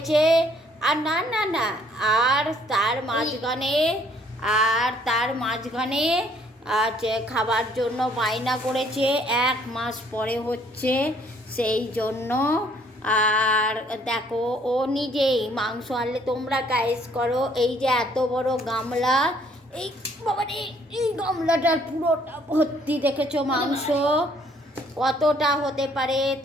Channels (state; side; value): normal; both; correlation 0.63